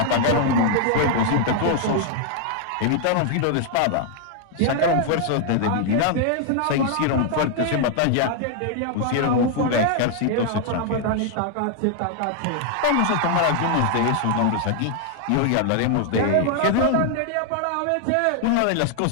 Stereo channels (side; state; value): both; different; correlation 0.00